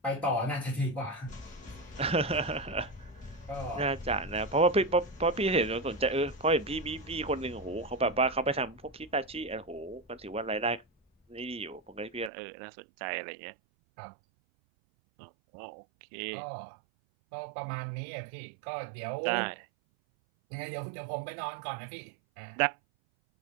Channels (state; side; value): drops out; left; at 12.3 s